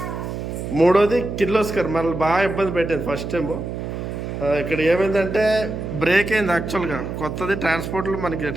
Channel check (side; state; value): right; noise; hum, 6 dB below the sound